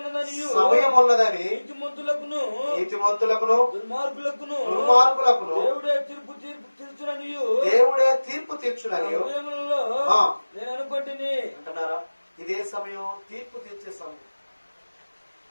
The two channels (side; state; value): both; inverted; correlation -1.00